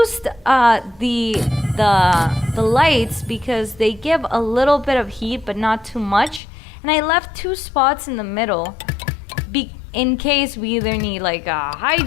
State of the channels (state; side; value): drops out; right; at 6.4 s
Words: the lights because they give a little bit of heat but not too much. And I left 2 spots in the middle in case we either need like a